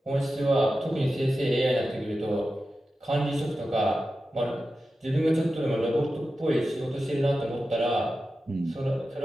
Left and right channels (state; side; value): normal; both; correlation 0.92